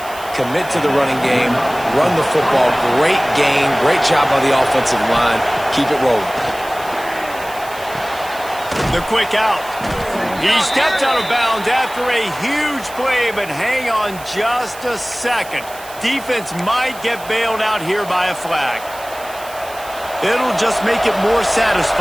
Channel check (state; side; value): noise; right; hiss, 17 dB below the sound